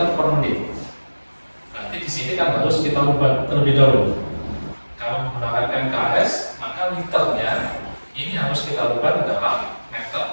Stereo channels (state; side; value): inverted; both; correlation -1.00